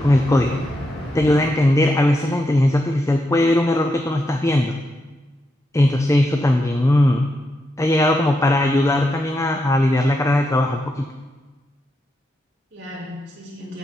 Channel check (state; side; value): normal; both; correlation 0.84